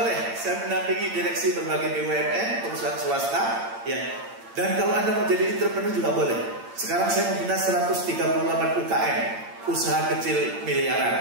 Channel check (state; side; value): late; left; 8.8 ms